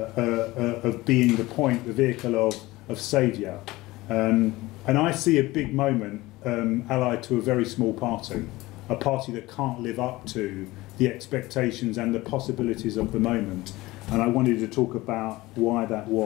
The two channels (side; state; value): right; quieter; 19.5 dB